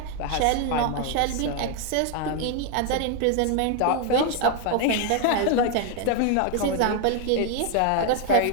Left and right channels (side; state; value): both; different; correlation 0.01